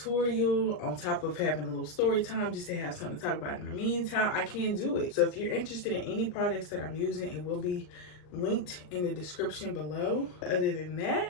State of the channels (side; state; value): right; late; 39 ms